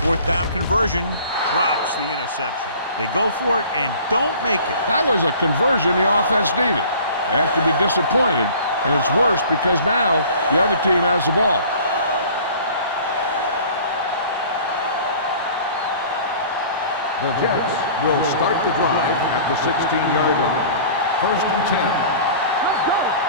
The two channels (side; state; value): both; inverted; correlation -0.46